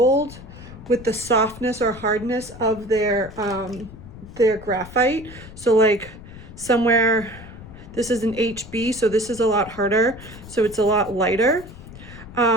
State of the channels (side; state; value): left; noise; rumble, 16 dB below the sound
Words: with the softness or hardness of their graphite. So like somewhere, this is an HB, so this is a lot harder, so it's a lot lighter.